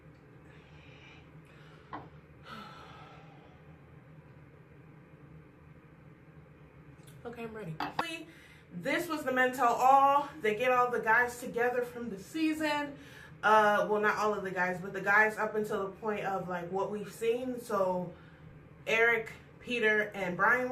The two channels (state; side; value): identical; both; correlation 1.00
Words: Okay, I'm ready. This was the men tell all. They get all the guys together from the season. Well, not all of the guys, but the guys up until the point of like what we've seen. So Eric, Peter, and Brian